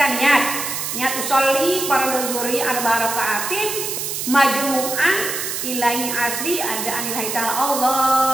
niat usolli fardu zuhri 4 rakaatin majmu'an ilahi asri ada anilahi ta'ala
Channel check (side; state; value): right; noise; hiss, 4 dB below the sound